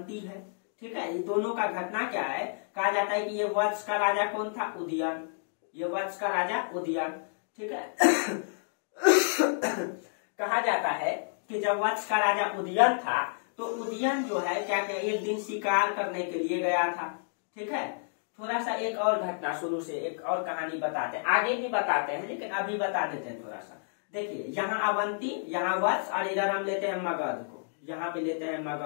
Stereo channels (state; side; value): silent; right; digital silence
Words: है। ठीक है, ये दोनों का घटना क्या है, कहा जाता है कि ये वत्स का राजा कौन था, उदयन। ये वत्स का राजा उदयन। ठीक है कहा जाता है कि जब वत्स का राजा उदयन था तो उदयन जो है क्या क्या एक दिन शिकार करने के लिए गया था। ठीक है, थोड़ा सा एक और घटना शुरू से एक और कहानी बताते हैं, आगे भी बताते हैं लेकिन अभी बता देते हैं थोड़ा सा। देखिए यहाँ अवंती, यहाँ वत्स, और इधर हम लेते हैं मगध को, यहाँ पे लेते हैं